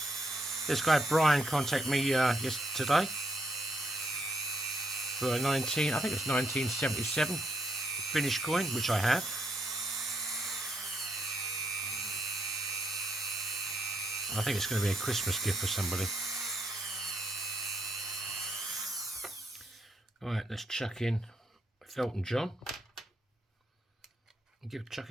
This guy Brian contacted me yesterday for a I think it's 1977 finished coin, which I have. I think it's going to be a Christmas gift for somebody. Alright, let's chuck in Felton John. And chuck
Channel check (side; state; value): both; normal; correlation 0.76